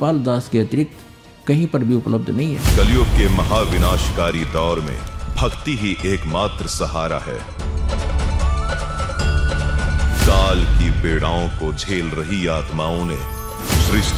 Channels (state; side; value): identical; both; correlation 1.00